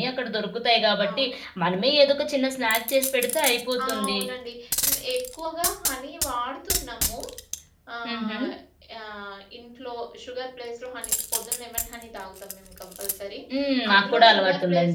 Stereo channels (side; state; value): both; identical; correlation 1.00